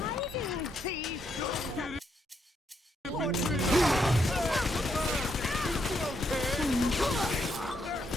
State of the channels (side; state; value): both; normal; correlation 0.77